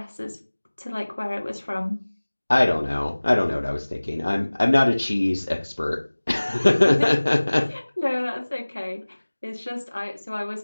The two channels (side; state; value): both; inverted; correlation -1.00